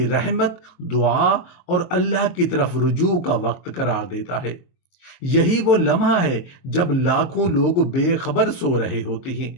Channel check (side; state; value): right; late; 23 ms